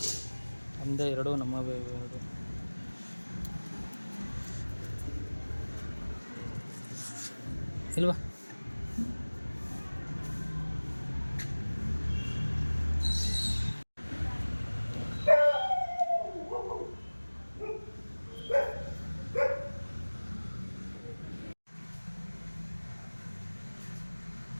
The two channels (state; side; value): inverted; both; correlation -1.00